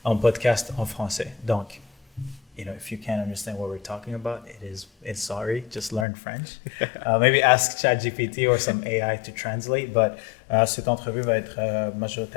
un podcast en français. Donc, if you can't understand what we're talking about, it's sorry. Just learn French. Maybe ask ChatGPT or some AI to translate. But cette entrevue va être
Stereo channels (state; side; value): drops out; right; at 6.1 s